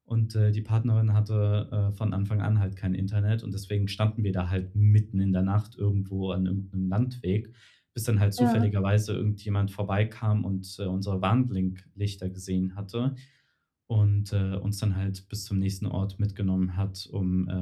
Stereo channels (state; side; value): identical; both; correlation 1.00